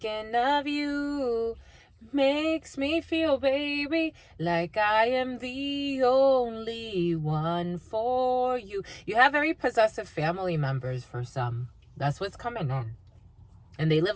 of you makes me feel, baby, like I am the only one for you. You have very possessive family members for some. That's what's coming in. And they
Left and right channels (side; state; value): both; identical; correlation 1.00